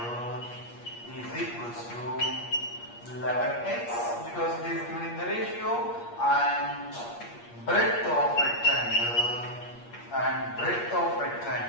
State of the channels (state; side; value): late; right; 8.5 ms